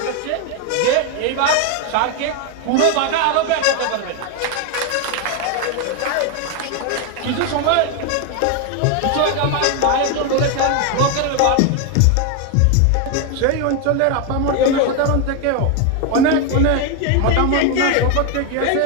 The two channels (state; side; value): different; both; correlation 0.01